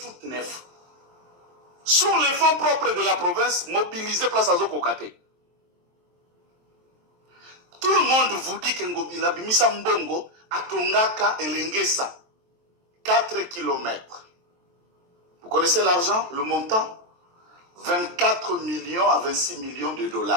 neufs. Sur les fonds propres de la province, mobilisés place à Zokokate. Tout le monde vous dit que Ngobila Bimisa Mbongo a Tongaka et Lengesa. 4 km. Vous connaissez l'argent, le montant? 24 millions à 26 millions de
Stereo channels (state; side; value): late; left; 23 ms